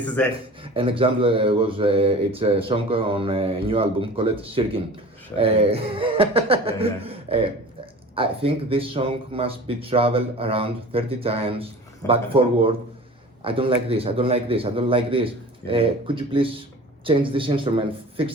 is it. An example was it's a song on a new album called Shirkin. I think this song must be traveled around 30 times back forward. I don't like this. I don't like this. I don't like this. Could you please change this instrument?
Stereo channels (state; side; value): normal; both; correlation 0.40